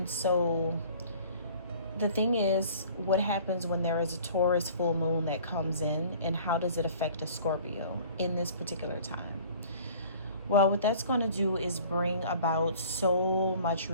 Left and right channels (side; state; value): both; inverted; correlation -0.49